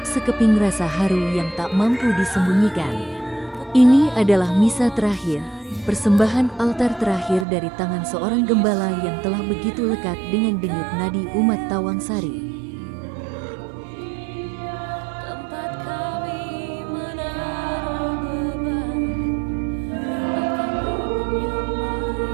sekeping rasa haru yang tak mampu disembunyikan. Ini adalah misa terakhir, persembahan altar terakhir dari tangan seorang gembala yang telah begitu lekat dengan denyut nadi umat Tawangsari.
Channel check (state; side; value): drops out; left; at 7.5 s